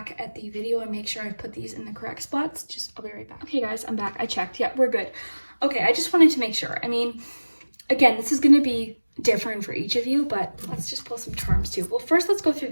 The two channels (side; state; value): both; inverted; correlation -1.00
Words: at the video, and make sure I've put these in the correct spots. I'll be right back. Okay guys, I'm back. I checked. Yeah, we're good. Okay, I just wanted to make sure. I mean, again, this is going to be different for each of you, but let's just pull some charms too. Well, first let's go through